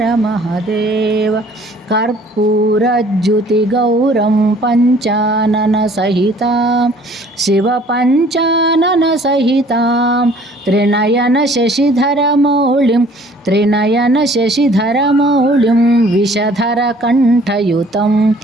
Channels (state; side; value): normal; both; correlation 0.55